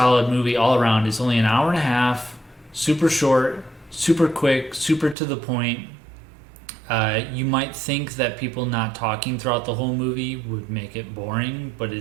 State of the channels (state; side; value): drops out; left; at 5.2 s